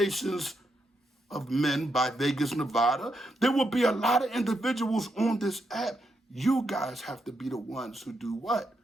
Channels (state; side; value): normal; both; correlation 0.81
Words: of Men by Vegas, Nevada. There will be a lot of individuals on this app. You guys have to be the ones who do what?